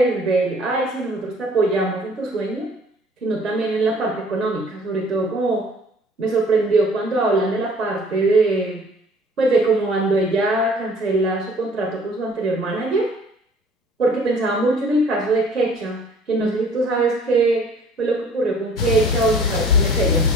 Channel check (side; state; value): both; normal; correlation 0.53